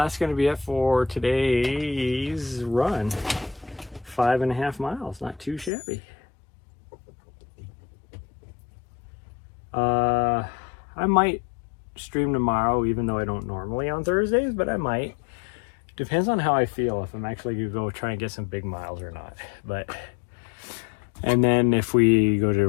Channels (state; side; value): drops out; right; at 5.7 s